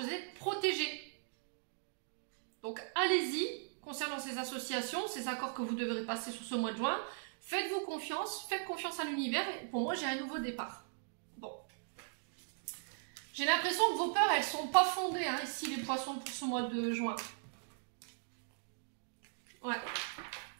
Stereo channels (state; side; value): silent; left; digital silence